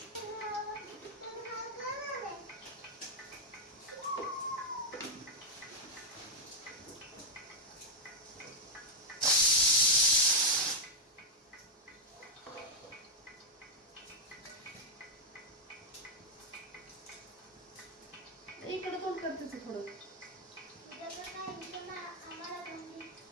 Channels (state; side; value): normal; both; correlation -0.01